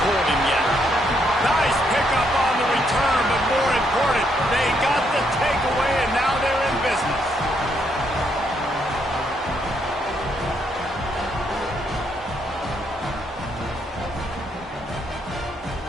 pulled him yet. Nice pickup on the return, but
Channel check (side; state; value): both; normal; correlation 0.74